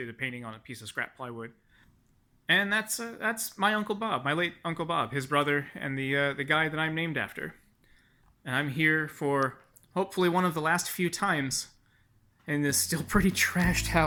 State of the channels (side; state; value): both; identical; correlation 1.00